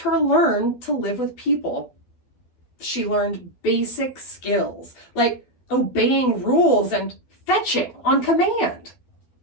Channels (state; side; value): late; right; 12 ms